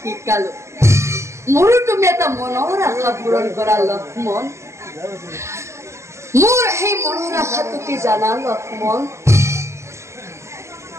মোৰো তুমি এটা মনৰ আশা পূৰণ কৰা লক্ষ্মণ। মোৰ সেই মনৰ আশাটো কি জানা লক্ষ্মণ?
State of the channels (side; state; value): left; late; 0.13 ms